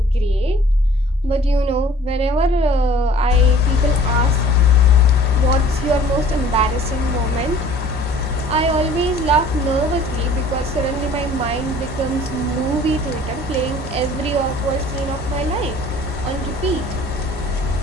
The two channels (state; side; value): normal; both; correlation 0.50